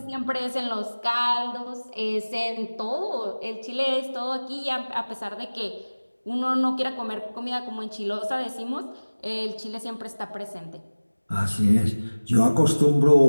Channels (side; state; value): both; inverted; correlation -1.00